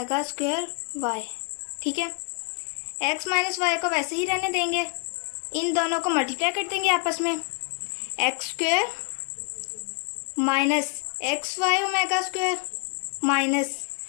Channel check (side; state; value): right; quieter; 35.5 dB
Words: square y. ठीक है, x माइनस वाई को वैसे ही रहने देंगे, इन दोनों को मल्टीप्लाई कर देंगे आपस में। X square minus X Y omega square minus